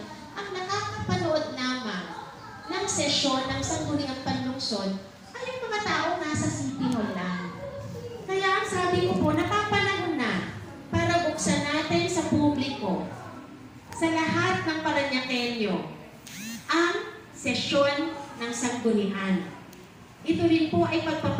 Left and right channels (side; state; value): both; identical; correlation 1.00